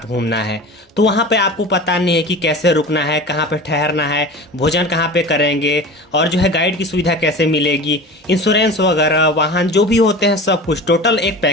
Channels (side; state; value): both; normal; correlation 0.34